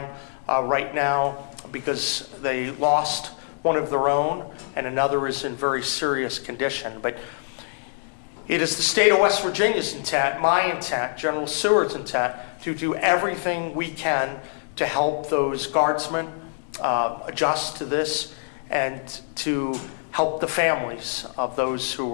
right now because they lost one of their own and another is in very serious condition. But it is the state of West Virginia's intent, my intent, General Seward's intent, to do everything we can to help those guardsmen adjust to this and to help the families of those who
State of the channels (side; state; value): right; silent; digital silence